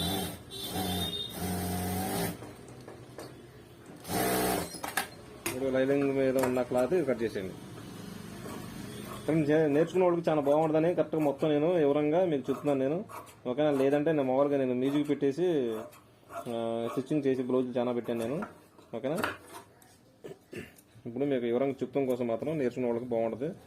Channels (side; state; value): both; identical; correlation 1.00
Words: ఇప్పుడు లైనింగ్ మీద ఉన్న క్లాత్ కట్ చేసేయండి. నేర్చుకున్న వాళ్ళకి చాలా బాగుంటుందని కరెక్ట్గా మొత్తం నేను వివరంగా మీకు చెప్తున్నాను నేను. ఓకేనా, లేదంటే నేను మామూలుగా నేను మ్యూజిక్ పెట్టేసి స్టిచ్చింగ్ చేసి బ్లౌజ్ చాలా పెట్టాను నేను. ఓకేనా, ఇప్పుడు మీకు వివరంగా చెప్తాం కోసం మాత్రం నేర్చుకున్న వాళ్ళకి బాగుంటుంది.